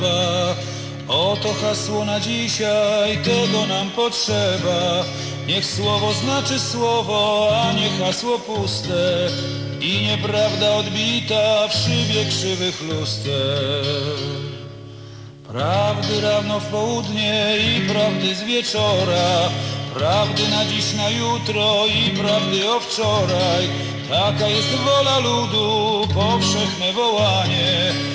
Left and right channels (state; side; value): identical; both; correlation 1.00